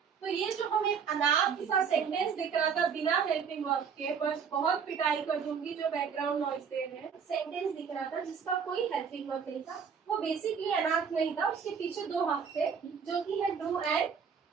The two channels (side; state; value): left; quieter; 6.6 dB